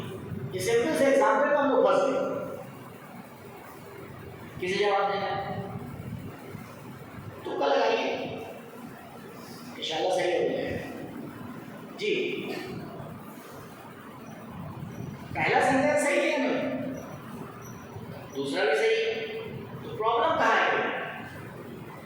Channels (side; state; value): both; identical; correlation 1.00